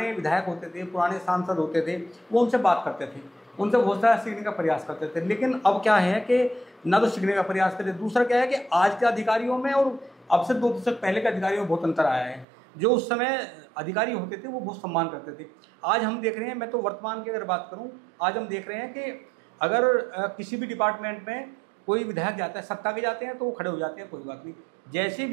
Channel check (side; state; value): left; drops out; at 12.5 s